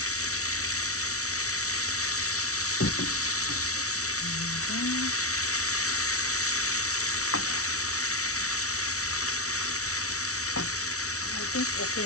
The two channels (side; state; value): right; late; 0.64 ms